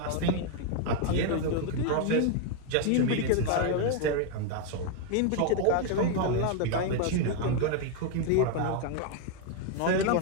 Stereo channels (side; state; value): both; different; correlation 0.01